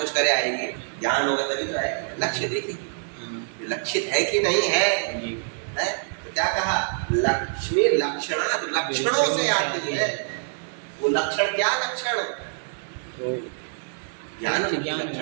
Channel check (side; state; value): left; silent; 61 dB below the other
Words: करे आएगी ज्ञान होगा तभी आएगी लक्ष्य देखिए हाँ लक्षित है कि नहीं है जी है तो क्या कहा लक्ष्मी लक्षणा लक्षणों से आती है वो लक्षण क्या लक्षण तो ज्ञान ज्ञान